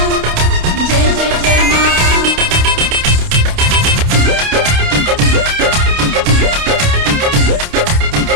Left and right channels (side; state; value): left; late; 28 ms